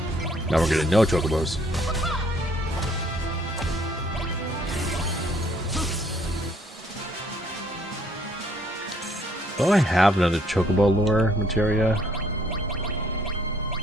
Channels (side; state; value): both; normal; correlation 0.64